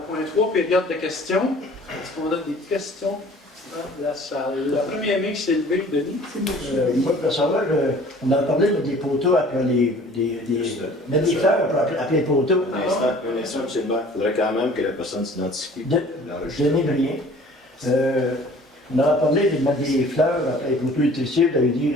point 3, période de questions. Est-ce qu'on a des questions dans la salle? La première main qui s'est levée, Denis. Moi, pour savoir, on a parlé des poteaux après mettre des fleurs après les poteaux. Un instant, M. le maire. Il faudrait quand même que la personne s'identifie. Denis Brien. On a parlé de mettre des fleurs après les poteaux électricités. Vous avez dit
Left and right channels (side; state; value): both; normal; correlation 0.50